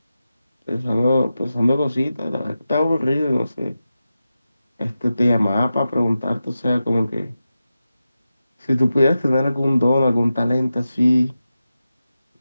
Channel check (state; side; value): inverted; both; correlation -0.92